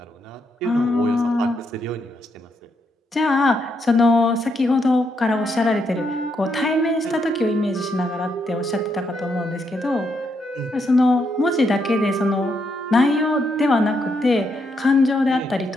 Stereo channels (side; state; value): both; normal; correlation 0.78